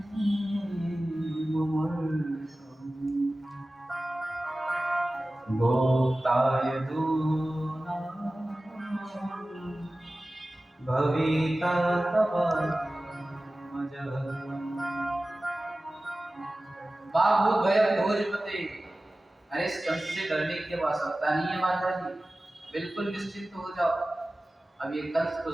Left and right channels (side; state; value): both; normal; correlation 0.96